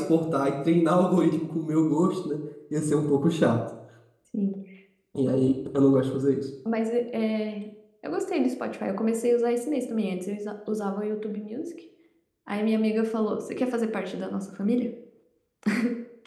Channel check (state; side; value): identical; both; correlation 1.00